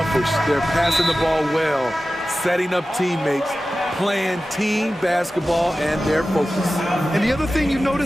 They're passing the ball well, setting up teammates, playing team basketball, and they're focused. And the other thing you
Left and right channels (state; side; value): normal; both; correlation 0.95